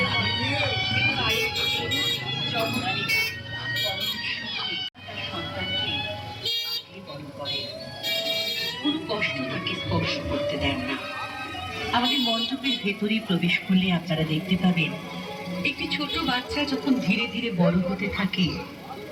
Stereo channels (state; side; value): identical; both; correlation 1.00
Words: কষ্ট তাকে স্পর্শ করতে দেন না। আমাদের মণ্ডপের ভেতরে প্রবেশ করলে আপনারা দেখতে পাবেন একটি ছোট বাচ্চা যখন ধীরে ধীরে বড় হতে থাকে,